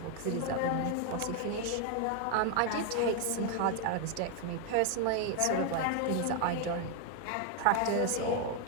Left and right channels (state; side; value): different; both; correlation 0.01